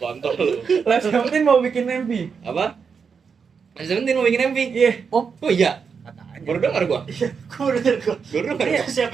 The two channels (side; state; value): left; quieter; 6.0 dB